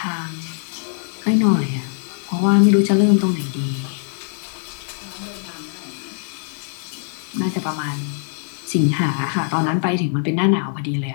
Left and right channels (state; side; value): silent; right; digital silence